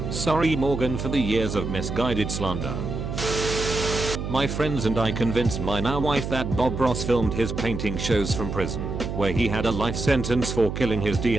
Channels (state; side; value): noise; right; hum, 5 dB below the sound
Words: Sorry Morgan for the years of misguided slander. My friends and I convinced my now wife that Bob Ross filmed his painting shows from prison, where he had a life sentence for killing his D